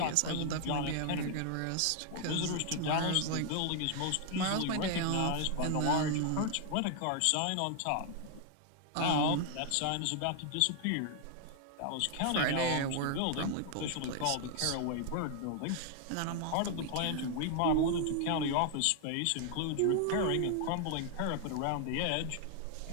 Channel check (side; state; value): both; different; correlation 0.00